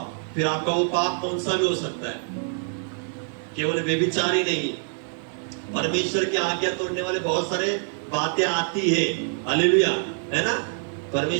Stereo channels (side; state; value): left; silent; 58 dB below the other